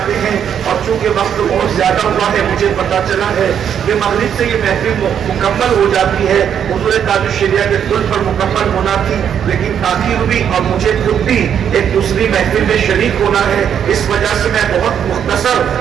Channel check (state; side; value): quieter; left; 8.6 dB